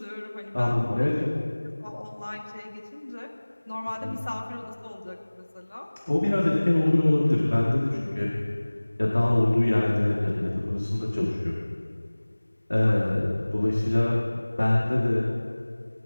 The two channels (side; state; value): both; inverted; correlation -1.00